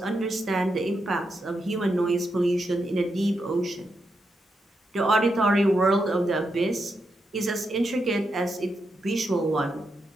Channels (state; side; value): normal; both; correlation 0.84